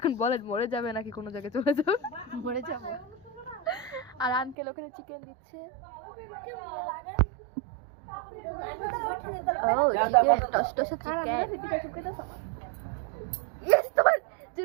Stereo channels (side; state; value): left; drops out; at 4.5 s